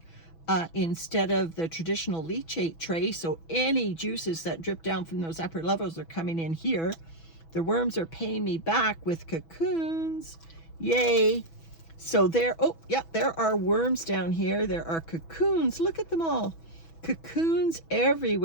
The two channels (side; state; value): right; late; 6.1 ms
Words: instead of the traditional leachate tray. So any juices that drip down from those upper levels are coming in here. The worms are paying me back with cocoons. Yay. So there, oh yeah, there are worms down here. There are cocoons. Look at them all. Cocoons